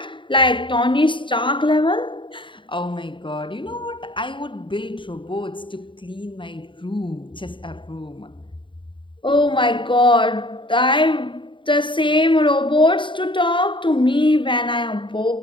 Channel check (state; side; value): late; right; 0.24 ms